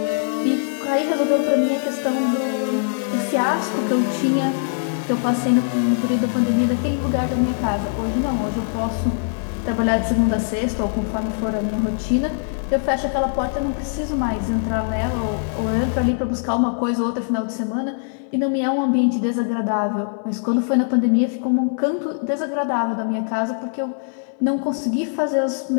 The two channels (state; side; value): silent; right; 64 dB below the other